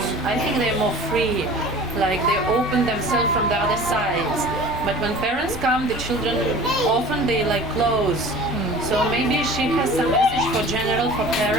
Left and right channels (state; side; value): normal; both; correlation 0.42